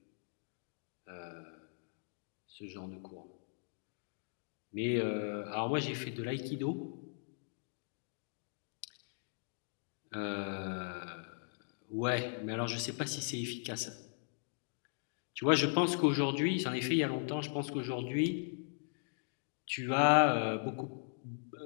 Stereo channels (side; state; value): right; silent; digital silence